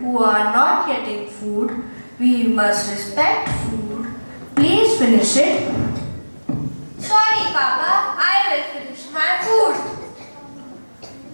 are not getting food. We must respect food. Please finish it. Sorry, Papa. I will finish my food.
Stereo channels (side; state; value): both; inverted; correlation -1.00